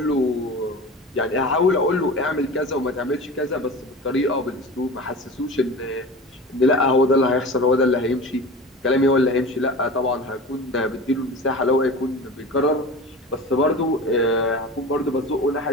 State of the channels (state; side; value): normal; both; correlation 0.34